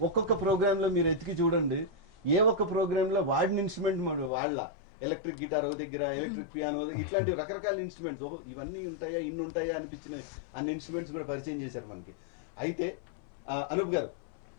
ఒక్కొక్క ప్రోగ్రామ్ లో మీరు ఎతికి చూడండి, ఏ ఒక్క ప్రోగ్రామ్ లో వాడిన ఇన్స్ట్రుమెంట్ వాళ్ళ ఎలక్ట్రిక్ గిటార్ ఒక దగ్గర, ఎలక్ట్రిక్ పియానో, ఇట్లాంటి రకరకాల ఇన్స్ట్రుమెంట్స్, ఓహో ఇవన్నీ ఉంటాయా, ఇన్ని ఉంటాయా అనిపించిన అన్ని ఇన్స్ట్రుమెంట్స్ కూడా పరిచయం చేశారు మనకి. అయితే అనూప్ గారు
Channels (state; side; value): drops out; right; at 4.3 s